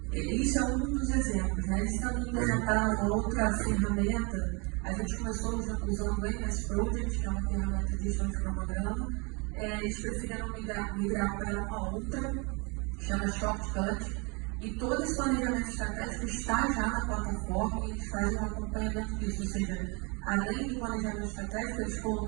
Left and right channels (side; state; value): left; quieter; 30.7 dB